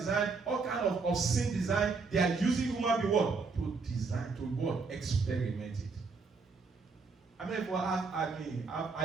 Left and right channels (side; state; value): left; quieter; 4.5 dB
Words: all kind of obscene design, they are using human being what? To design, to what? Experiment it. I mean, have